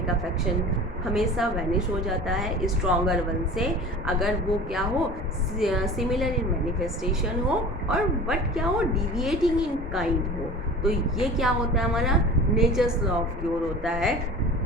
अफेक्शन हमेशा वैनिश हो जाता है स्ट्रॉन्गर वन से, अगर वो क्या हो, सिमिलर इन मैनिफेस्टेशन हो और बट क्या हो, डिविएटिंग इन काइंड हो। तो ये क्या होता है, हमारा नेचर्स लॉ ऑफ क्यूर होता है।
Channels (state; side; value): normal; both; correlation 0.38